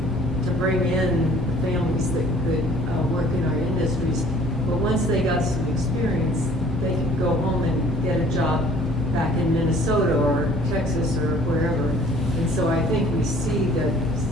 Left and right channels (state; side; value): normal; both; correlation 0.54